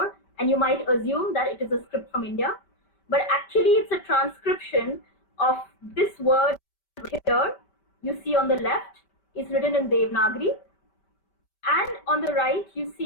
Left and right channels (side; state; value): right; late; 5.2 ms